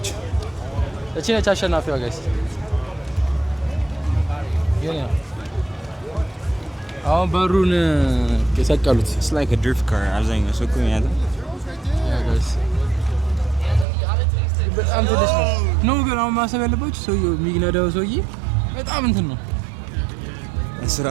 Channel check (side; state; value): left; drops out; at 13.9 s